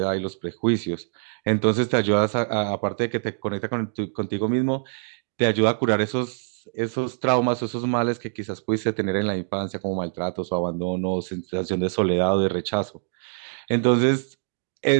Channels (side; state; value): left; silent; digital silence